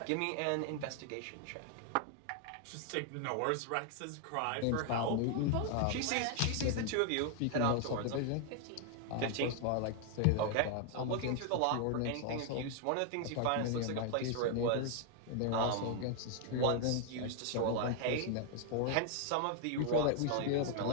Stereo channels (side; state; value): both; different; correlation 0.00